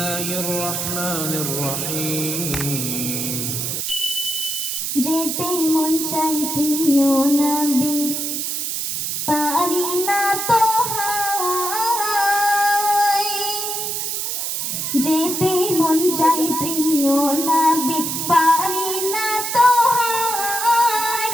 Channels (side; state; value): right; noise; hiss, 2 dB below the sound